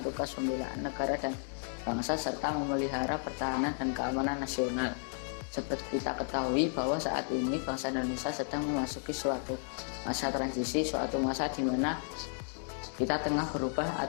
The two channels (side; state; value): right; silent; 56 dB below the other